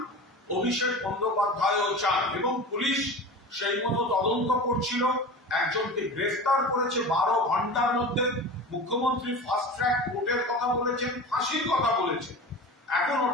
অভিষেক বন্দ্যোপাধ্যায়ও চান, এবং পুলিশ সেই মতো তদন্ত করছিল, একজনকে গ্রেফতার করেছে 12 ঘন্টার মধ্যে। মুখ্যমন্ত্রী ফাস্ট ট্র্যাক কোর্টের কথা বলেছেন, ফাঁসির কথা বলেছেন, এখন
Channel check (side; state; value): both; normal; correlation 0.33